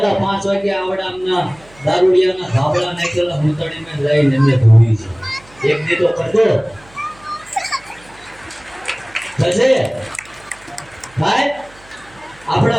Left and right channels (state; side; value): noise; right; hum, 26 dB below the sound